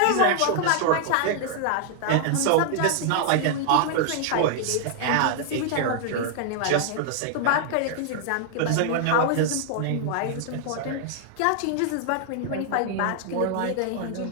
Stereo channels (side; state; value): both; different; correlation -0.01